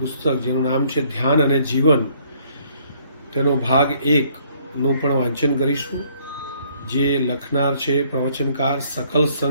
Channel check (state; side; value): inverted; both; correlation -0.63